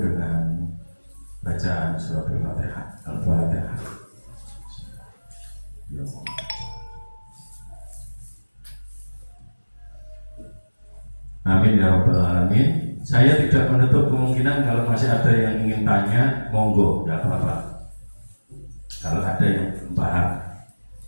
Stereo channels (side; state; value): both; inverted; correlation -1.00